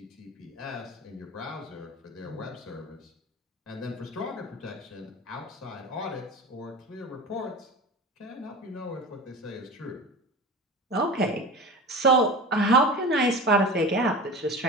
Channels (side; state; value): both; normal; correlation 0.32